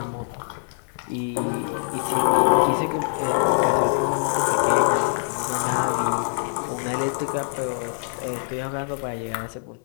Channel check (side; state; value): right; silent; 63 dB below the other